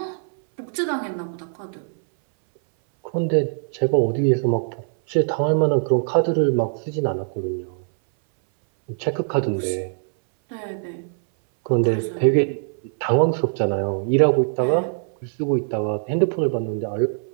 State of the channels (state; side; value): silent; left; 61 dB below the other